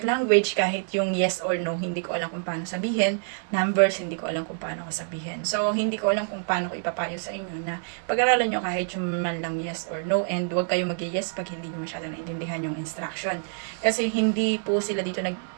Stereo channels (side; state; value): left; silent; digital silence